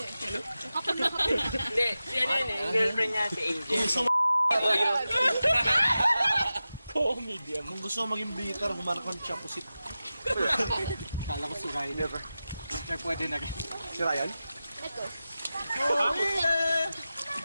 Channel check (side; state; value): both; inverted; correlation -0.94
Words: Hindi, si ano yun eh. Yung girlfriend niya, si Angel. Comedian. Kung gusto mo maging bitter, humanap ka ng chapusit. Kala ko si Ryan. Sir, pwede na. Si Ryan? Ito.